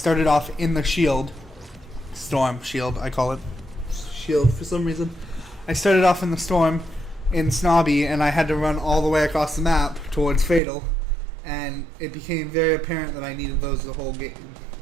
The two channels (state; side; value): drops out; left; at 10.6 s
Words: off in the storm shield, I call it shield for some reason. I started off in the storm in Snobby, and I had to run all the way across the map towards Fatal, and it became very apparent that I needed those the whole game.